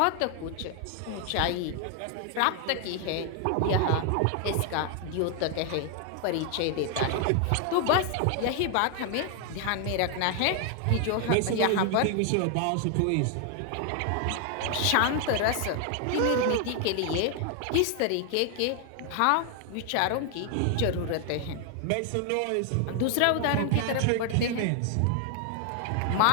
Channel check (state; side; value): different; both; correlation 0.00